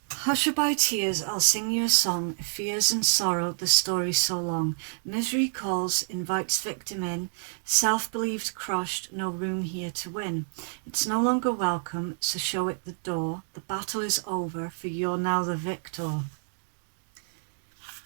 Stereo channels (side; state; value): left; silent; digital silence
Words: Hushaby tears, I'll sing you a song, fears and sorrow, the story so long. Misery calls, invites victim in, self-believed crushed, no room here to win. It's no longer welcome, so show it the door. The battle is over, for you're now the victor.